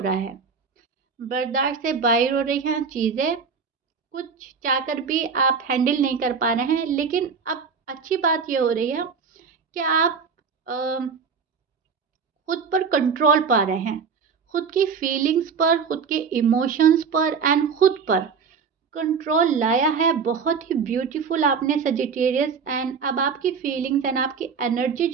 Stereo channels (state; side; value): quieter; left; 5.8 dB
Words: है, बर्दाश्त से बाहर हो रही हैं चीज़ें, कुछ चाहकर भी आप हैंडल नहीं कर पा रहे हैं। लेकिन अब अच्छी बात ये हो रही है कि आप खुद पर कंट्रोल पा रहे हैं, खुद की फीलिंग्स पर, खुद के इमोशंस पर एंड खुद पर कंट्रोल लाया है। बहुत ही ब्यूटीफुल आपने सजिटेरियस। एंड अब आपकी फीलिंग्स एंड आपकी एनर्जी